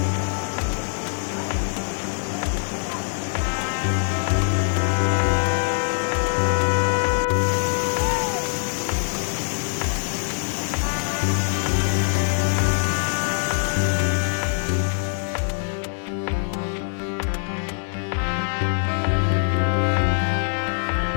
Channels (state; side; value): silent; right; 63 dB below the other